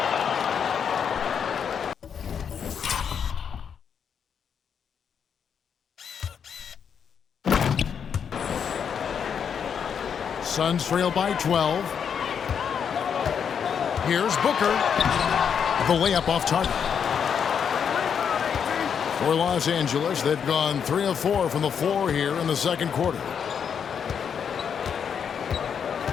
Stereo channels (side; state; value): right; quieter; 7.4 dB